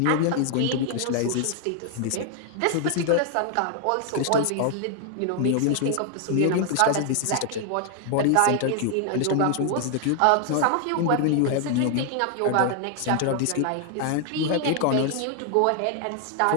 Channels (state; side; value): different; both; correlation 0.00